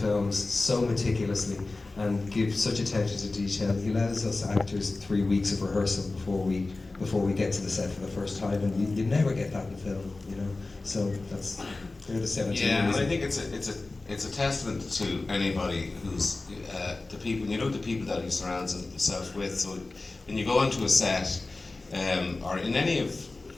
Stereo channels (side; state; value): right; quieter; 3.3 dB